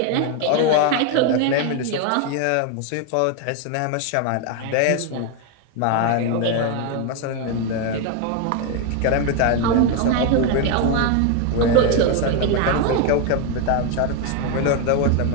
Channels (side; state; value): both; different; correlation 0.01